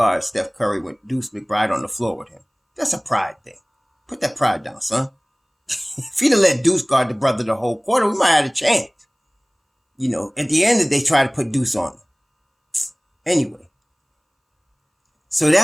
Steph Curry with Deuce McBride on the floor with him. That's a pride thing. Put that pride down, son. If he'd have let Deuce guard the brother the whole quarter, we might have had a chance. At the end, they tried to put Deuce on him. Anyway. So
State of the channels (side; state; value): both; identical; correlation 1.00